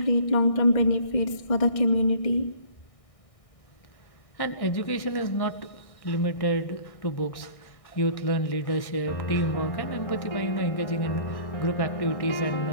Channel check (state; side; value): late; right; 1.6 ms